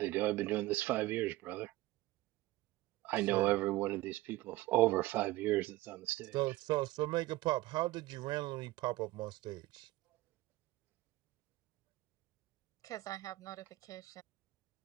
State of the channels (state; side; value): quieter; left; 18.3 dB